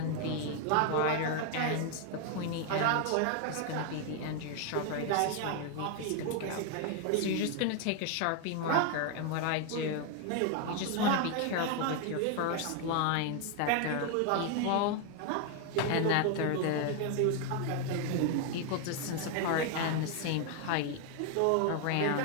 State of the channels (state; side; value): different; both; correlation 0.01